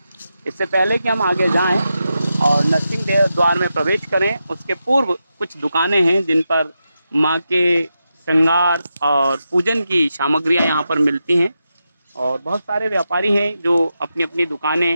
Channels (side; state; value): both; inverted; correlation -0.88